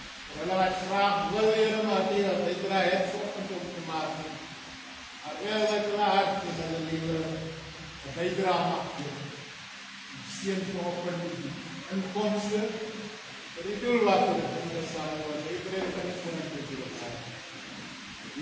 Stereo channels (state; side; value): identical; both; correlation 1.00